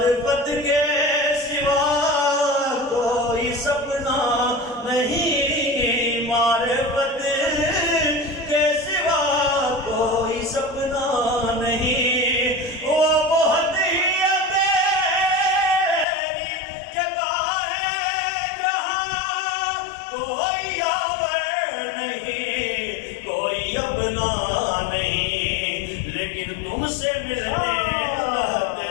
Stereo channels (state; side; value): drops out; right; at 16.1 s